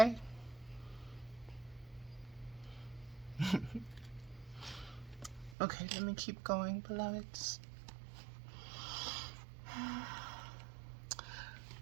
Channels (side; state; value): left; drops out; at 5.6 s